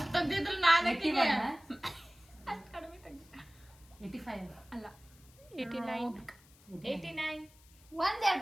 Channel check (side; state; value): left; noise; hiss, 27 dB below the sound